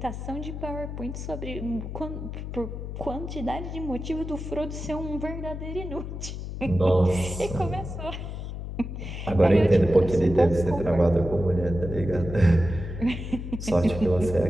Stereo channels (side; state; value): left; noise; hum, 7 dB below the sound